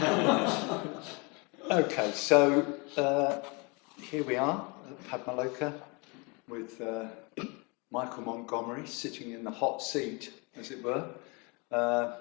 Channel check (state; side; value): quieter; right; 30.0 dB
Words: Okay, so here we are at Padmaloka with Michael Montgomery sitting in the hot seat, as it were.